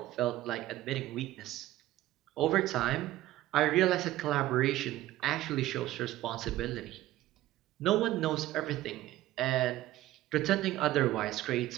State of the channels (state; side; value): quieter; left; 15.4 dB